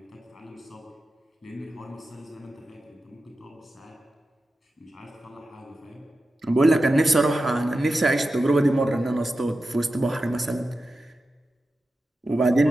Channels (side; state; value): both; normal; correlation 0.92